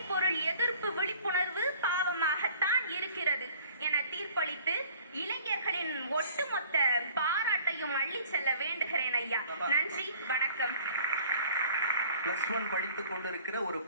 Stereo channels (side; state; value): both; inverted; correlation -0.51